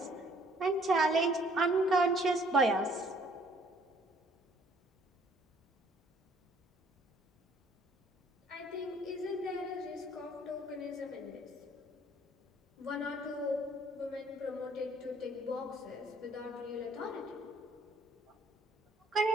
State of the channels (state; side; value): normal; both; correlation 0.60